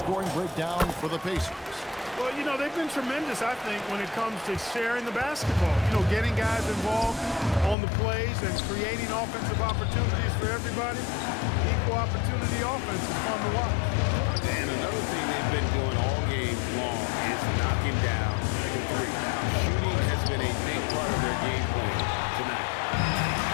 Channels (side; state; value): right; drops out; at 7.8 s